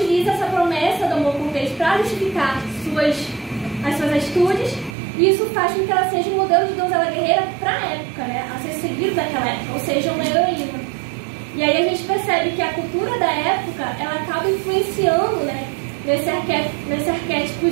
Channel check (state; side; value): drops out; left; at 5.0 s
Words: essa promessa do amor cortês para justificar as suas atitudes, e isso faz com que ela seja um modelo de donzela guerreira para a época, né, a ser seguido daquela época, ou seja, uma heroína. E aí a gente percebe que a cultura da época, ela acaba influenciando, né, nesse arquétipo